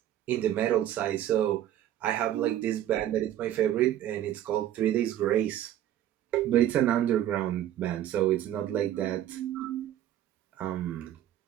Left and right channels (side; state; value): left; quieter; 12.1 dB